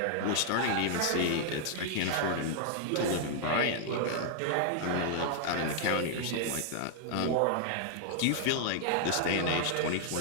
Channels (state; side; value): different; both; correlation -0.01